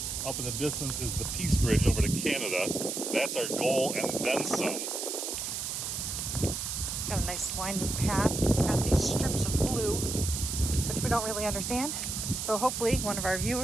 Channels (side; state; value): right; noise; hiss, 3 dB below the sound